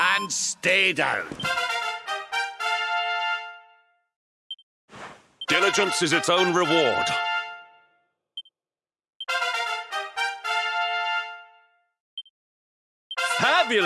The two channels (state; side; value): identical; both; correlation 1.00